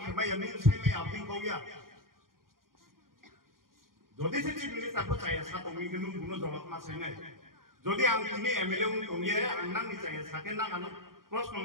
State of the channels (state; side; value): late; left; 0.91 ms